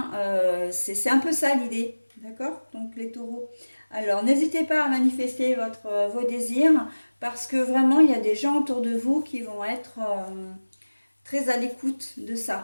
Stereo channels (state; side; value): inverted; both; correlation -1.00